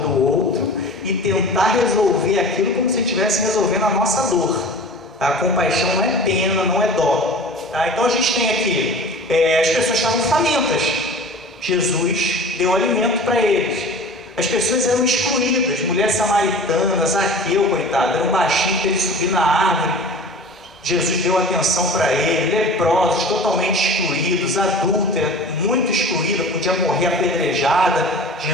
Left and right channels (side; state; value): both; normal; correlation 0.38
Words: outro e tentar resolver aquilo como se estivesse resolvendo a nossa dor. A compaixão não é pena, não é dó. Tá? Então a gente tem aqui, as pessoas estavam famintas, Jesus deu alimento para eles. As pessoas eram excluídas, mulher samaritana, Zaqueu, coitado, era um baixinho que ele subir na árvore. Jesus deu atenção para ele. Leprosos, totalmente excluídos, adúltera, muito excluída, podia morrer apedrejada.